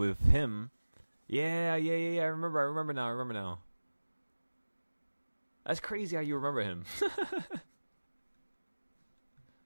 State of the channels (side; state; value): both; inverted; correlation -1.00